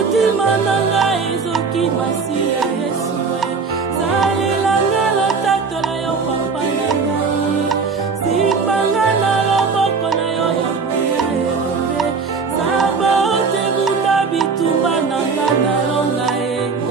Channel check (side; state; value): left; quieter; 4.9 dB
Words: nanga ezoki Masia Yesu salelanga lotatola yo papa nanga sipanga na loboko na yo ya mbuya elombe saba ote bunda bitumba nanga na longa ya